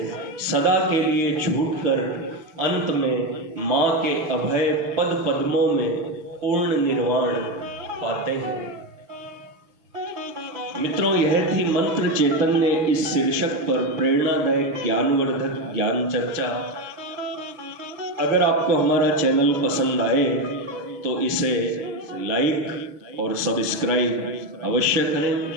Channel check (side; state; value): left; late; 6.0 ms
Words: सदा के लिए छूटकर अंत में माँ के अभय पद पद्मों में पूर्ण निर्वाण पाते हैं। मित्रों, यह थी मंत्र चैतन्य इस शीर्षक पर प्रेरणादायक ज्ञानवर्धक ज्ञान चर्चा। अगर आपको हमारा चैनल पसंद आए तो इसे लाइक और सब्सक्राइब अवश्य करें।